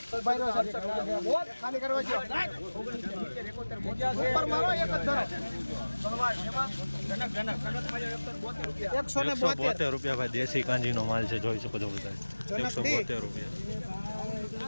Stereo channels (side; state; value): both; inverted; correlation -1.00